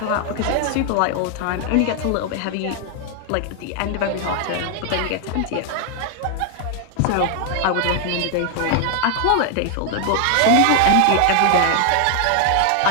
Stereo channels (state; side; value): different; both; correlation 0.00